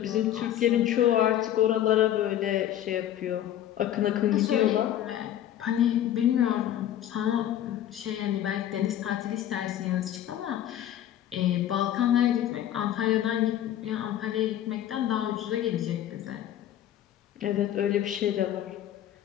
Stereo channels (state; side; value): quieter; right; 11.5 dB